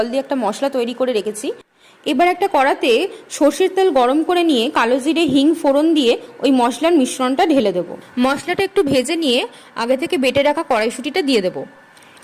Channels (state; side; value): identical; both; correlation 1.00